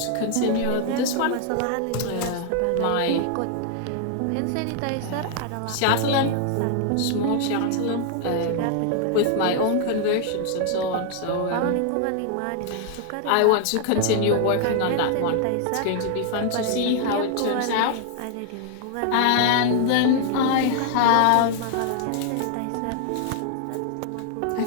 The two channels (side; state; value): both; different; correlation 0.00